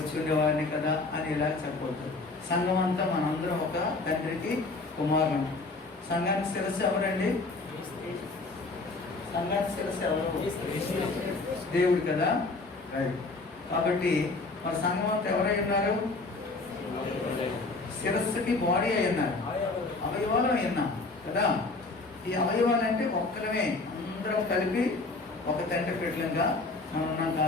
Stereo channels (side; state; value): right; quieter; 3.5 dB